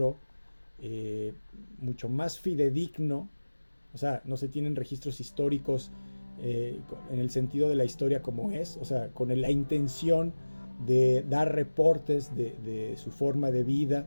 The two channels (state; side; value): inverted; both; correlation -1.00